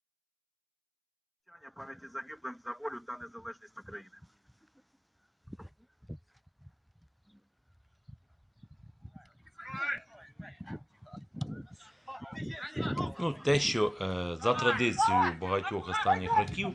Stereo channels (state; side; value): identical; both; correlation 1.00